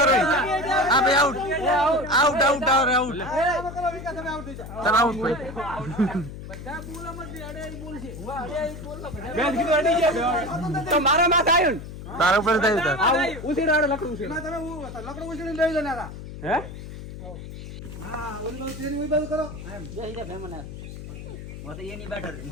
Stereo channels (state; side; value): noise; left; hum, 11 dB below the sound